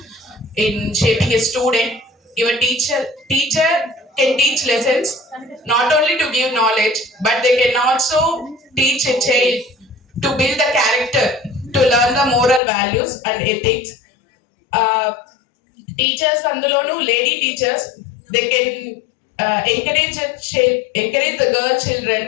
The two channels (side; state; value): right; drops out; at 12.6 s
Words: in shaping a student. Your teacher can teach lessons not only to give knowledge, but they can also teach a child to build the character, to learn the moral values and ethics. Teachers andulonu lady teachers, they can encourage the girl children,